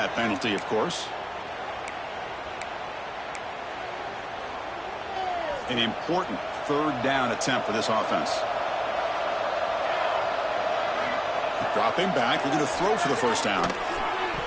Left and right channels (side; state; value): both; identical; correlation 1.00